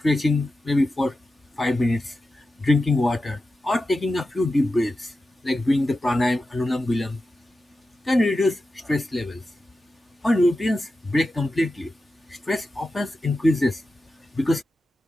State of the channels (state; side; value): normal; both; correlation 0.91